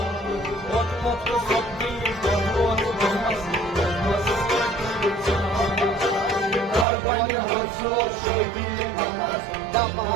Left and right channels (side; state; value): left; drops out; at 6.9 s